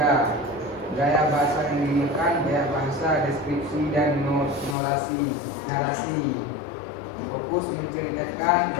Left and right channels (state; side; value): drops out; right; at 4.8 s